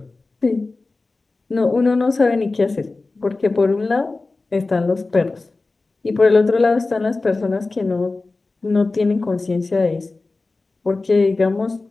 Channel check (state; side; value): quieter; right; 3.5 dB